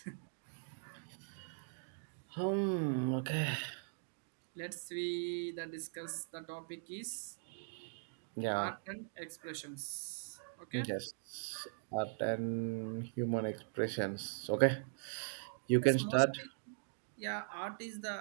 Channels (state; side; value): silent; left; digital silence